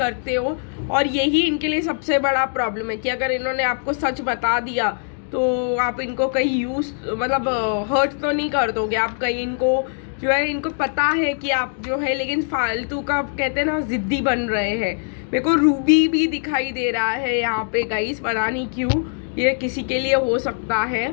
हो, और यही इनके लिए सबसे बड़ा प्रॉब्लम है कि अगर इन्होंने आपको सच बता दिया तो आप इनको कहीं हर्ट तो नहीं कर दोगे, आप कहीं इनको जो है इनको पता है कि आप जो है, लेकिन फालतू का कहते हैं ना ज़िद्दी बन रहे हैं। मेरे को रूबी भी दिखाई दे रहा है यहाँ पे गाइस, पता नहीं क्यों, ये किसी के लिए हो सकता है।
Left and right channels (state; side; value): silent; right; digital silence